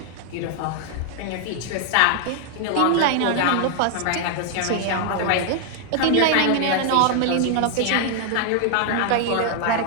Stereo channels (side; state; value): both; different; correlation 0.00